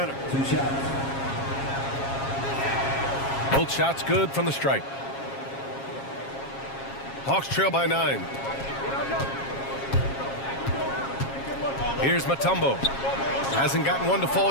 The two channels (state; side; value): late; right; 7.3 ms